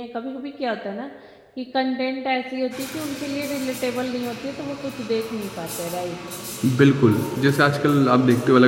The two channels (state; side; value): identical; both; correlation 1.00